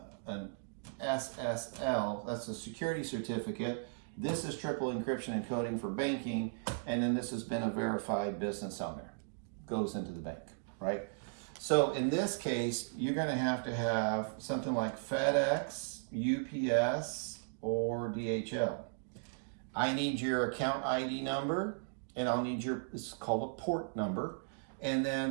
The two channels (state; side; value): silent; left; digital silence